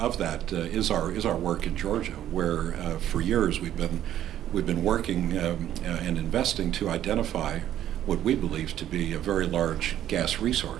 that is our work in Georgia, where for years we've been working and investing to identify what we believe to be a very large gas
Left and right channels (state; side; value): quieter; left; 11.6 dB